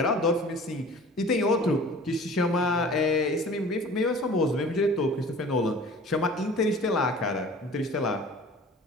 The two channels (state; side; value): normal; both; correlation 0.44